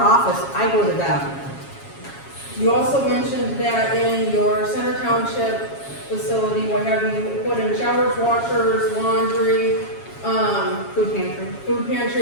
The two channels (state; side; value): late; right; 7.3 ms